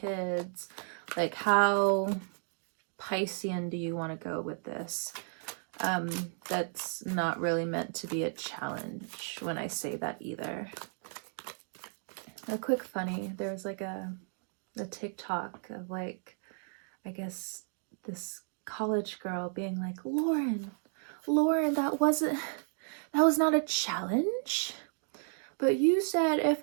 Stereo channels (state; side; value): silent; left; 55 dB below the other